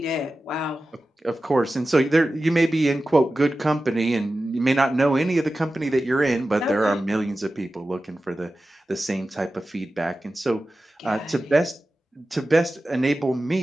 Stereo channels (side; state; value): both; normal; correlation 0.94